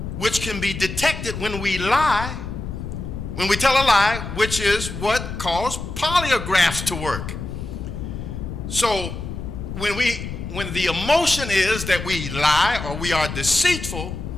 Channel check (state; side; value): noise; left; rumble, 7 dB below the sound